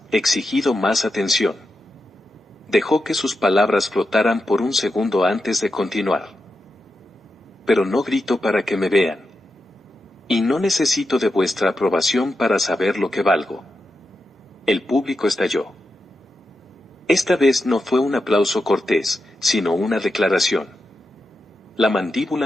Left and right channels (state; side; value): normal; both; correlation 0.88